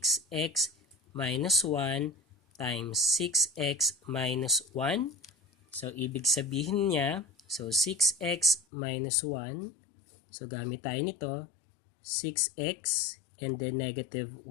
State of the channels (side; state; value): right; drops out; at 8.7 s